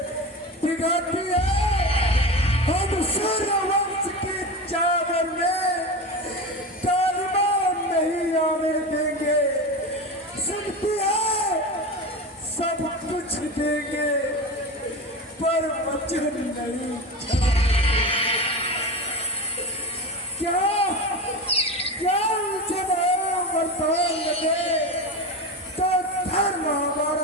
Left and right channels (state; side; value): normal; both; correlation 0.25